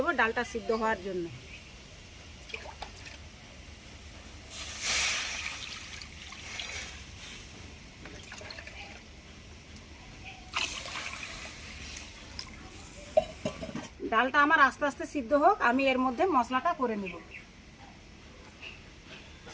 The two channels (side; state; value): both; identical; correlation 1.00